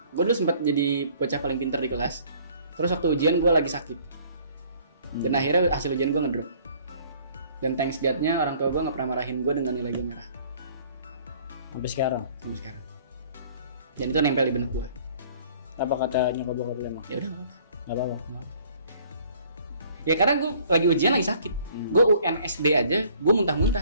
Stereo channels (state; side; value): inverted; both; correlation -0.56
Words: Gue dulu sempat jadi bocah paling pinter di kelas. Terus waktu ujian gue lagi sakit. Dan akhirnya hasil ujian gue ngedrop. Dan thanks God-nya orang tua gue nggak pernah marahin gue dengan nilai gue merah. Sampai sekarang. Dan itu nempel di benak gue. Apa kata nyokap bokap lu emang? Ya udah nggak apa-apa. Ya karena gue lagi ujian lagi sakit. Gue UN SD aja, gue